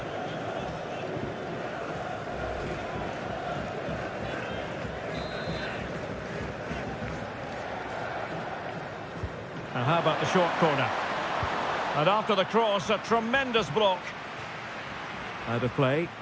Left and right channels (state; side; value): identical; both; correlation 1.00